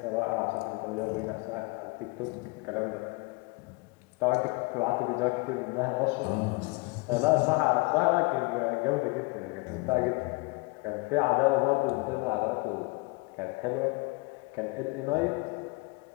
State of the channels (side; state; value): right; quieter; 26.8 dB